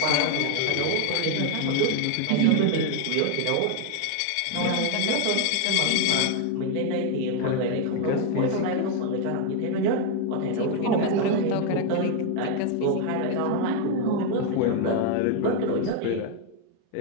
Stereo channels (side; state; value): both; different; correlation 0.01